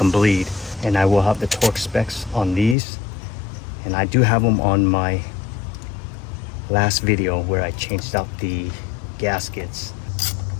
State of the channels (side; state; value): right; drops out; at 2.8 s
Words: bleed. And I will have the torque specs on these, and I do have them on my last video where I changed out the gaskets.